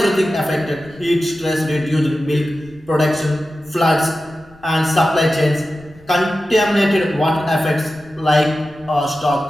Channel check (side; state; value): left; noise; rumble, 27 dB below the sound